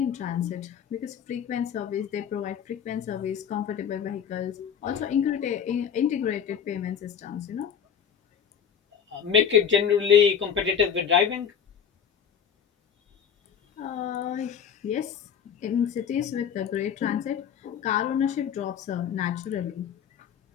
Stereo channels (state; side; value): quieter; right; 7.8 dB